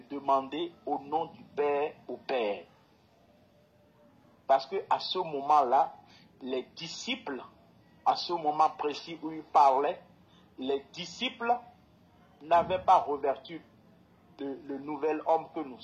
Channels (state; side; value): identical; both; correlation 1.00